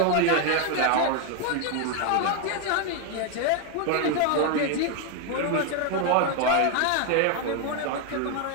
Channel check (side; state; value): both; different; correlation 0.01